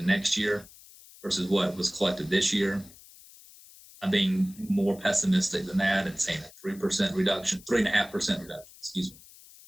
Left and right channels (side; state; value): left; noise; hiss, 22 dB below the sound